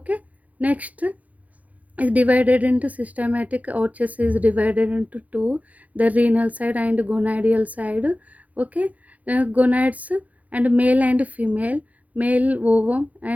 next is divided into systematic arches is divided into two, the renal side and gonadial side. Okay, gonads and male and female, male ovum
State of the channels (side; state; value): left; late; 0.074 ms